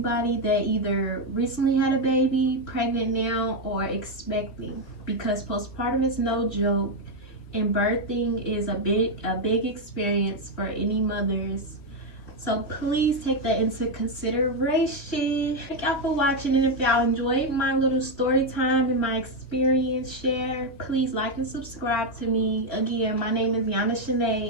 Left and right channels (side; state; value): right; late; 3.2 ms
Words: that either recently had a baby, pregnant now, or expecting, because postpartum is no joke, and birthing is a big experience for any mothers. So please take that into consideration. Thank y'all for watching, and if y'all enjoyed my little story time and my experience share, please like and subscribe to me. Again, my name is Yana